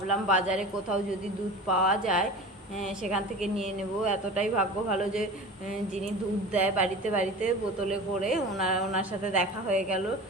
বাজারে কোথাও যদি দুধ পাওয়া যায় সেখান থেকে নিয়ে নেব। এতটাই ভাগ্য ভালো যে যিনি দুধ দেয় বাড়িতে বাড়িতে বোতলে করে, ওনার সাথে দেখা হয়ে গেল,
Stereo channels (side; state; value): both; normal; correlation 0.34